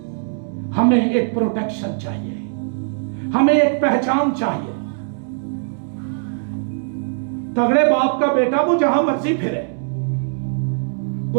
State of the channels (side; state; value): left; silent; digital silence